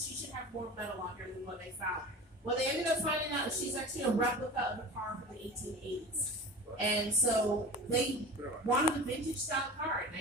she should have more metal on her than what they found. Well, they ended up finding out that she's actually a replica of a car from the 1880s. And so they wanted a vintage style car in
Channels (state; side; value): normal; both; correlation 0.34